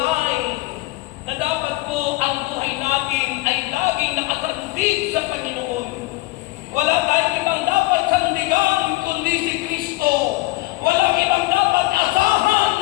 na dapat po ang buhay natin ay laging nakasandig sa Panginoon. Wala tayong ibang dapat sandigan kundi si Kristo. Walang ibang dapat asahan.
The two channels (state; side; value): quieter; right; 21.1 dB